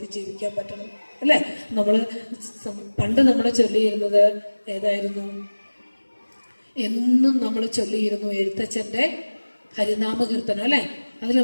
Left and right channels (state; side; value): inverted; both; correlation -1.00